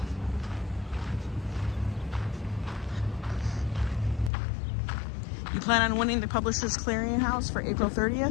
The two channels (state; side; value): drops out; right; at 4.3 s